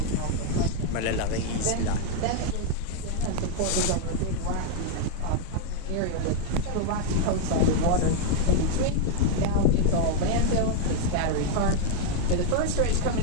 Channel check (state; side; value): different; both; correlation 0.00